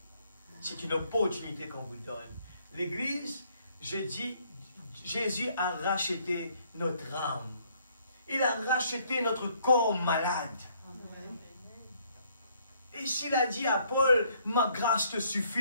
C'est une opportunité qu'on vous donne. L'Église, je dis, Jésus a racheté notre âme. Il a racheté notre corps malade. Et s'il a dit à Paul, ma grâce te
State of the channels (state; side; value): inverted; both; correlation -0.66